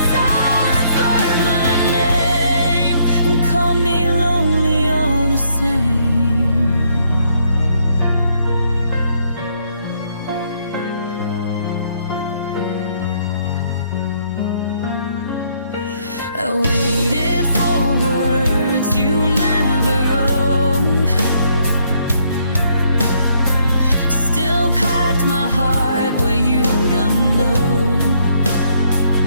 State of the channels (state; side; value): inverted; both; correlation -0.70